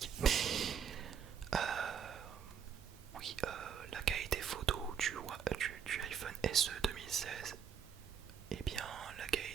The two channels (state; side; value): quieter; left; 7.5 dB